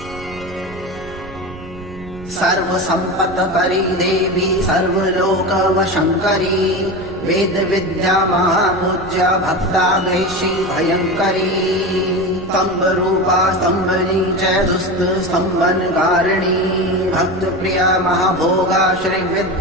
सर्वसम्पत्करी देवी सर्वलोकवशङ्करी वेद विद्या महापूज्या भक्ताग्रेशी भयङ्करी स्तम्भरूपा स्तम्भनी च दुस्त स्तम्भनकारिणी भक्तप्रिया महाभोगा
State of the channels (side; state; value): right; noise; rumble, 16 dB below the sound